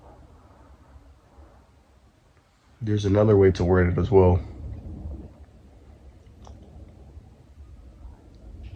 There's another way to word it as well.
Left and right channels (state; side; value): identical; both; correlation 1.00